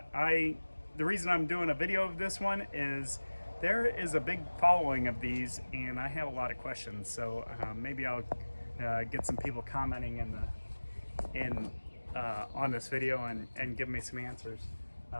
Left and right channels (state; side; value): inverted; both; correlation -1.00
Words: The reason I'm doing a video of this one is there is a big following of these, and I have a lot of questions. So maybe I'll get some people commenting on this video and give me some answers.